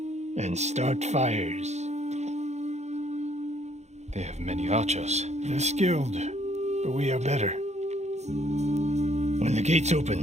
And start fires. They have many archers. They're skilled, but we are better. When the gates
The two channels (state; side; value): late; left; 0.33 ms